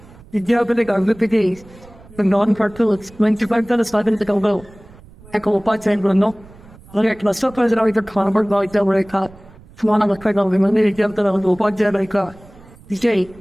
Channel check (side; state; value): right; noise; rumble, 23 dB below the sound